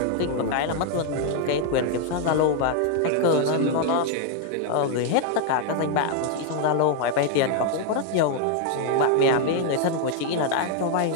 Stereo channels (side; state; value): both; different; correlation 0.00